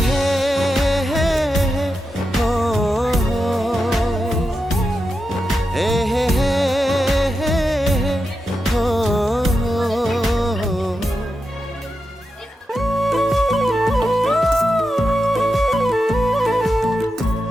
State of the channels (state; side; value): normal; both; correlation 0.88